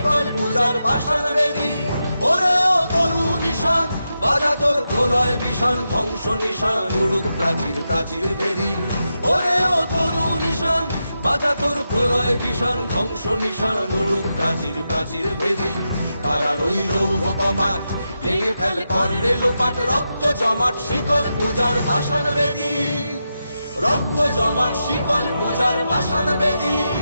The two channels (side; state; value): both; inverted; correlation -0.88